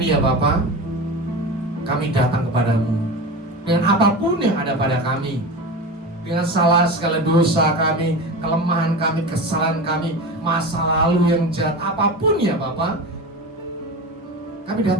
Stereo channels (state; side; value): normal; both; correlation 0.27